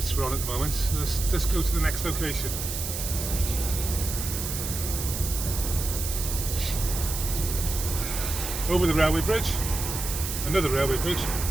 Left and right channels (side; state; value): right; noise; hiss, 5 dB below the sound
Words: we're on at the moment. So let's go to the next location. Over the railway bridge, another railway bridge,